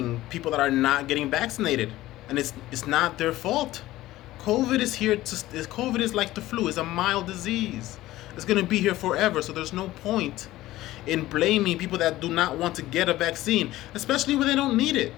people that are not getting vaccinated. And it's not their fault. COVID is like the flu. It's a mild disease. It's going to be here forever. So there's no point in blaming people that do not want to get a vaccine, especially when they don't need it.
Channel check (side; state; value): right; quieter; 16.1 dB